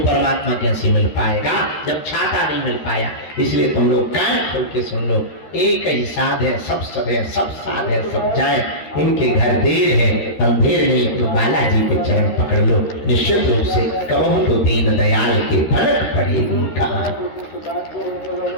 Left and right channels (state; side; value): late; right; 13 ms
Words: कैसे मिल पाएगा जब छाता नहीं मिल पाया? इसलिए तुम लोग कान खोल के सुन लो, एक ही साध है, सब सद है, सब साध है, सब जाए, इनके घर देर है, अंधेर नहीं, तो बालाजी के चरण पकड़ लो। निश्चित रूप से कहूं तो दीन दयाल के फर्क पड़ेगी कहाँ।